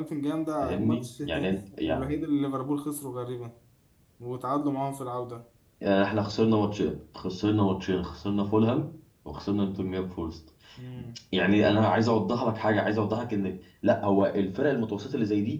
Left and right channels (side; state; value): both; identical; correlation 1.00